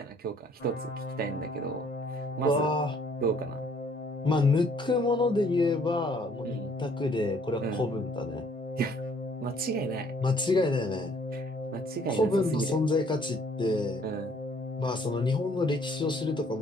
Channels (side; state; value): both; normal; correlation 0.61